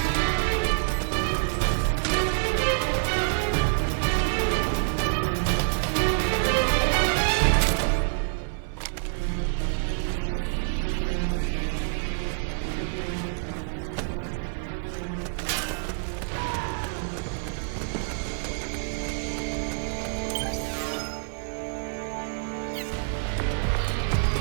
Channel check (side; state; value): left; silent; 56 dB below the other